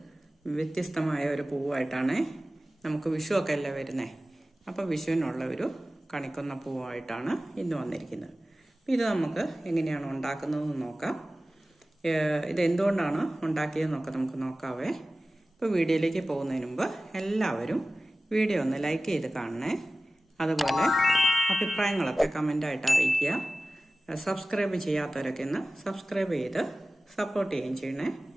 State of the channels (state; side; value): normal; both; correlation 0.96